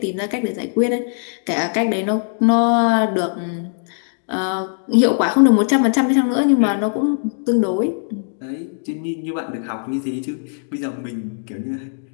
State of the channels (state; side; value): silent; right; digital silence